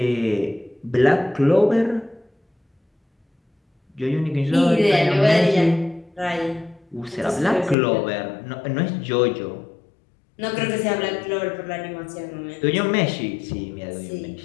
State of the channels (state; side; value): drops out; right; at 7.8 s